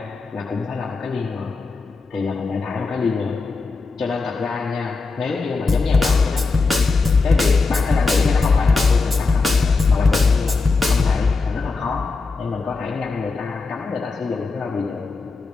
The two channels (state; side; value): quieter; right; 4.1 dB